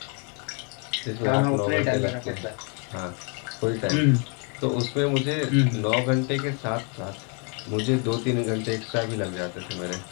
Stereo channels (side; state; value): right; quieter; 37.1 dB